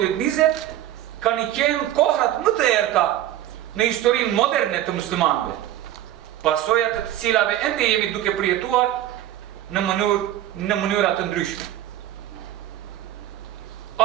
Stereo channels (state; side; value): quieter; left; 13.0 dB